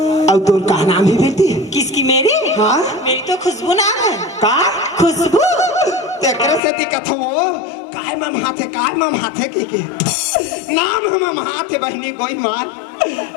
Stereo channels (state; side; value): drops out; right; at 6.6 s